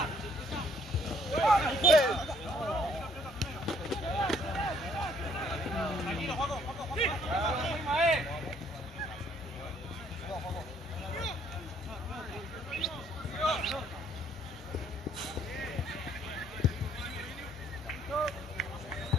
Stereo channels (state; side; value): normal; both; correlation 0.64